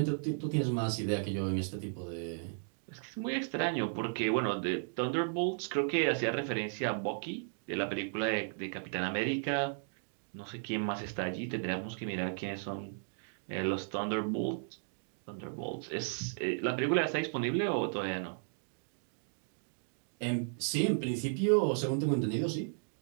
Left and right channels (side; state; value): left; silent; digital silence